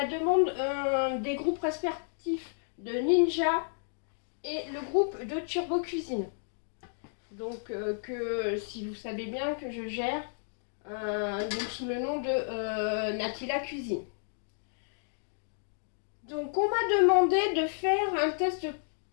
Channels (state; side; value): silent; right; digital silence